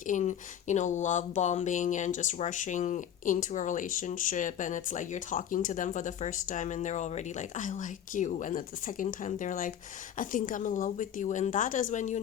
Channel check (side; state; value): right; quieter; 9.6 dB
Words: in, love bombing and just rushing into a relationship, and it's like you're talking to them for the first time and they're already like, I like you, and at the second time they're like, I think I'm in love with you, and that is when you